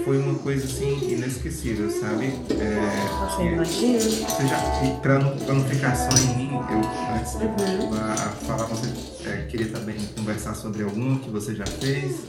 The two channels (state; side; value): identical; both; correlation 1.00